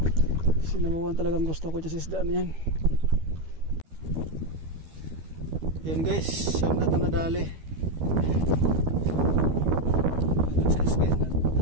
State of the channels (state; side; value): late; left; 12 ms